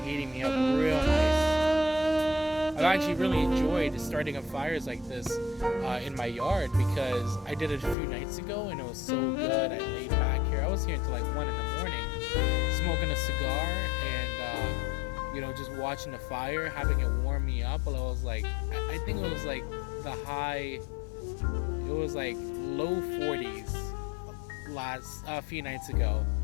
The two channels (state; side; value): drops out; right; at 8.0 s